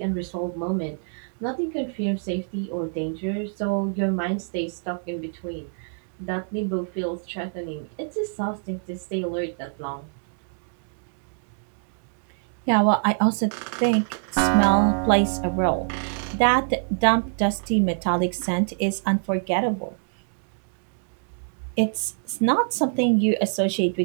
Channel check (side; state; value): left; silent; digital silence